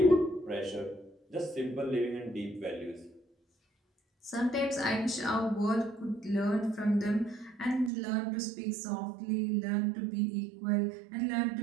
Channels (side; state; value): left; drops out; at 7.9 s